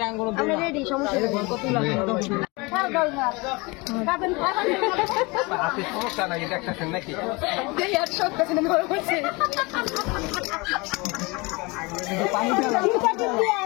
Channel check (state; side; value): quieter; right; 26.1 dB